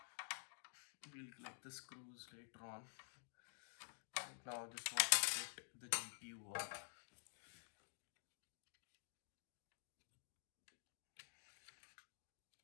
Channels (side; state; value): right; silent; digital silence